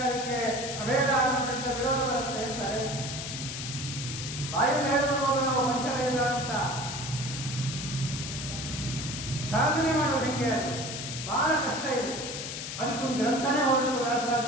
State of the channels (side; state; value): left; noise; hiss, 6 dB below the sound